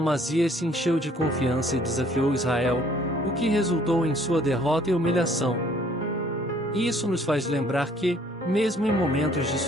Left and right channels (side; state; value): both; normal; correlation 0.60